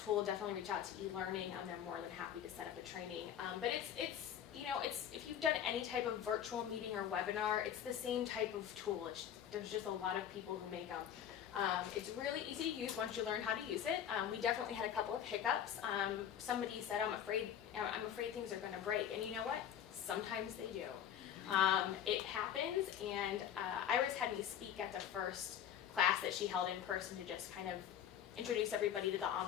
definitely reach out to eLearning. They're more than happy to set up a training. But it's if you've done any type of virtual meeting or webinar, it's the same type of tool. There's just a lot of people who make them. It's really easy to use once you learn how to use it. We definitely had a couple of hiccups. Somebody said, I'm afraid things are going to break. And you know what? Sometimes they do. It happens, and Iris had me speak at the first class that she held in person to just kind of introduce everybody to the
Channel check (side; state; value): right; quieter; 9.6 dB